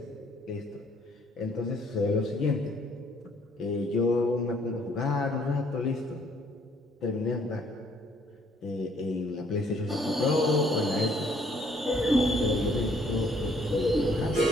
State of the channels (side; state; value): both; normal; correlation 0.64